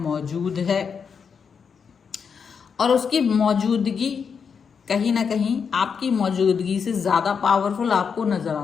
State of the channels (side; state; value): right; quieter; 6.3 dB